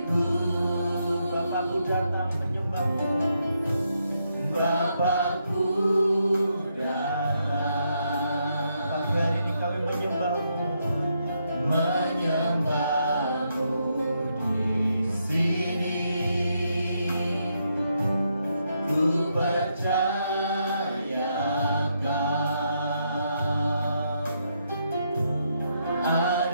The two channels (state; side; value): inverted; both; correlation -0.78